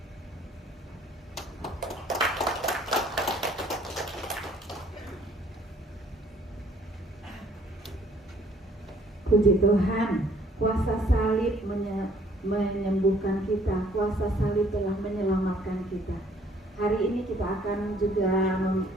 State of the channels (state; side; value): normal; both; correlation 0.60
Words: Puji Tuhan, kuasa salib menyembuhkan kita, kuasa salib telah menyelamatkan kita. Hari ini kita akan juga